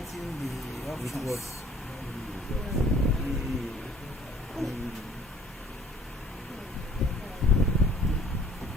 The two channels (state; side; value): normal; both; correlation 0.55